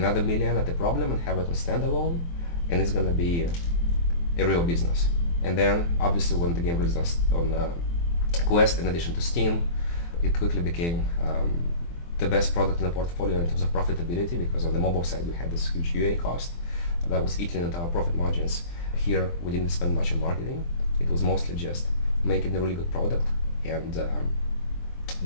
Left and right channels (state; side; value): late; right; 23 ms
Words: $1 million at the problem and have it on standalone, and it's going to be a real business. And then obviously when the game released on Quest, in addition to Steam, it quickly became the best product in the portfolio in terms of profitability, because on the mobile side we had this huge UA cost that was eating into our profit margins. Here we didn't spend much on marketing. It was mostly just making a really good product and